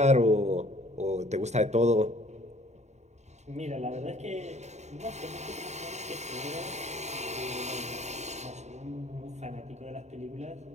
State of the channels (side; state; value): left; late; 0.33 ms